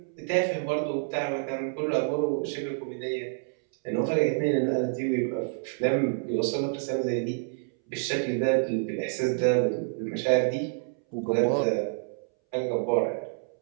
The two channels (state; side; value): silent; left; 59 dB below the other